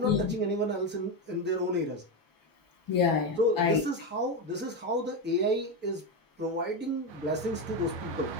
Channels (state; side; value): normal; both; correlation 0.12